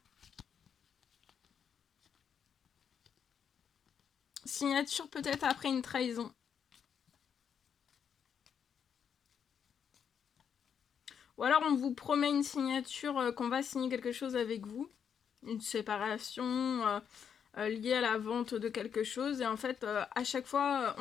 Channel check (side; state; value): right; quieter; 7.6 dB